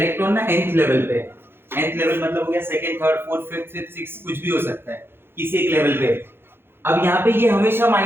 ना nth level पे, nth level मतलब हो गया second, third, fourth, fifth, sixth, sixth, कुछ भी हो सकता है किसी एक लेवल पे। अब यहाँ पे ये हमेशा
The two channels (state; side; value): late; left; 0.11 ms